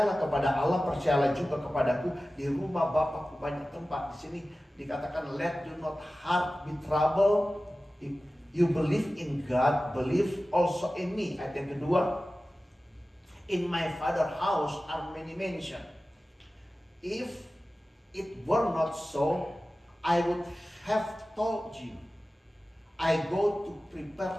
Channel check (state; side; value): normal; both; correlation 0.96